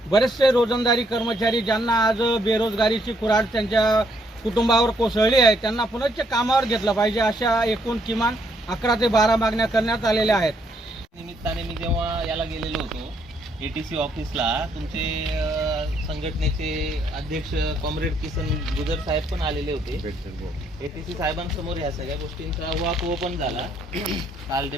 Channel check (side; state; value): both; normal; correlation 0.71